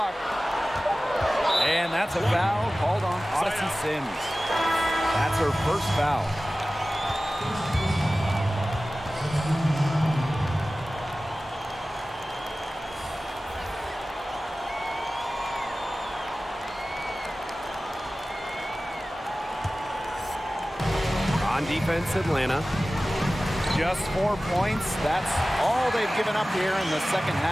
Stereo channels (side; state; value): both; normal; correlation 0.96